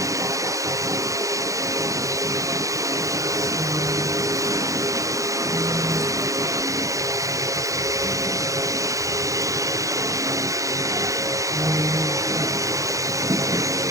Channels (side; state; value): left; late; 0.16 ms